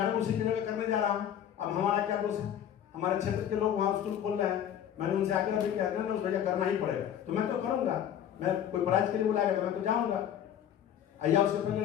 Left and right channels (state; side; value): quieter; right; 9.8 dB